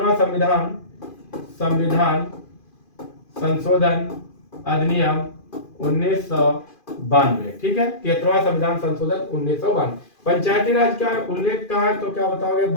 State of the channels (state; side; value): late; right; 2.4 ms